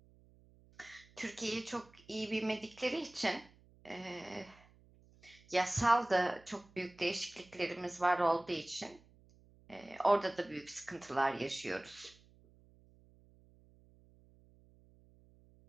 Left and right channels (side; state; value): right; noise; hum, 27 dB below the sound